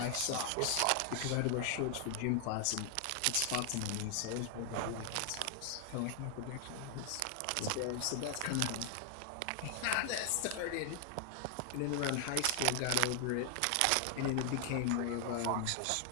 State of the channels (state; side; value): different; both; correlation 0.00